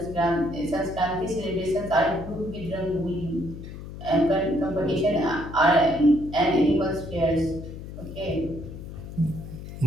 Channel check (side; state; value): left; noise; hum, 11 dB below the sound